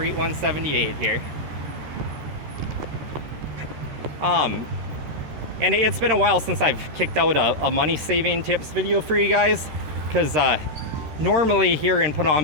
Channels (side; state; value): left; late; 13 ms